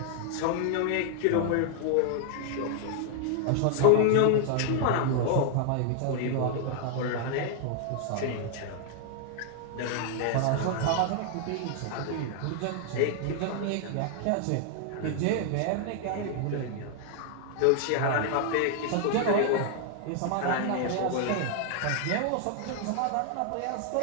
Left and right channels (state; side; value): different; both; correlation 0.00